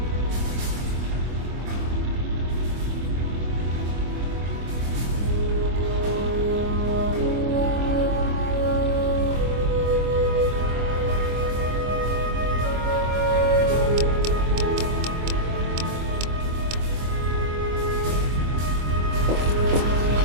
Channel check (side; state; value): left; late; 25 ms